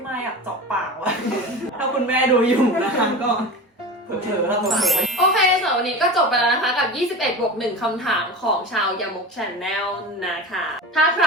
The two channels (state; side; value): normal; both; correlation 0.30